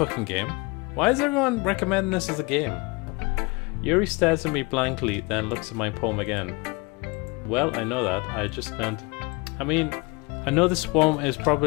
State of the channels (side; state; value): right; quieter; 26.0 dB